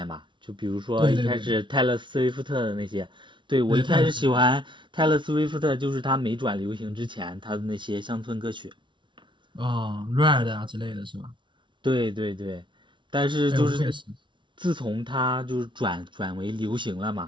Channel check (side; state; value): left; late; 0.24 ms